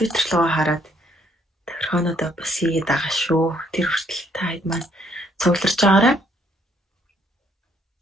руу хараад тохирхоонуудаа бас хийгээд байгаа шүү. Тэр хүртэл та хэд маань цугларч байгаарай.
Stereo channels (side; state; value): both; normal; correlation 0.67